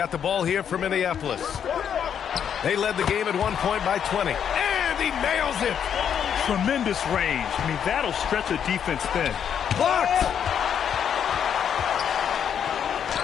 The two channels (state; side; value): quieter; right; 8.4 dB